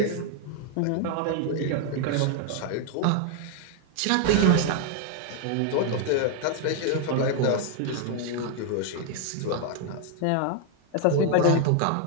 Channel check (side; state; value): both; different; correlation 0.00